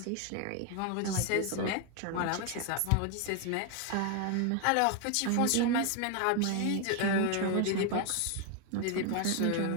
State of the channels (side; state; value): both; different; correlation 0.01